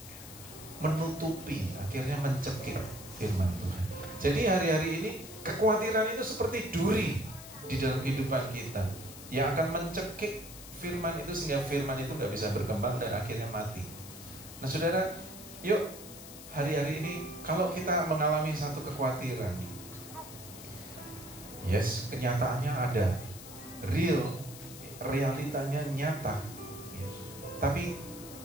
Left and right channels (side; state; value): left; noise; hiss, 14 dB below the sound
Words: menutupi, akhirnya mencekik firman Tuhan. Jadi hari-hari ini kekhawatiran itu seperti duri di dalam kehidupan kita yang akan mencekik firman itu sehingga firman itu nggak bisa berkembang dan akhirnya mati. Nah saudara, yuk hari-hari ini kalau kita mengalami satu kekhawatiran, yes, kenyataannya ada, realitanya nyata, ya. Tapi